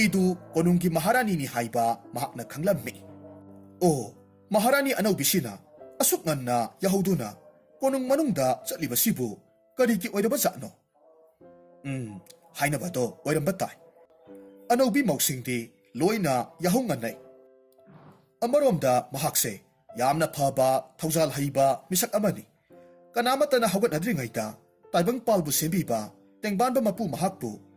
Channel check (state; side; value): identical; both; correlation 1.00